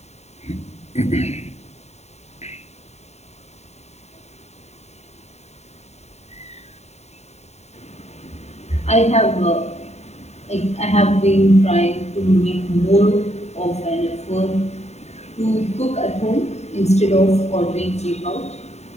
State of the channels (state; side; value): late; right; 0.32 ms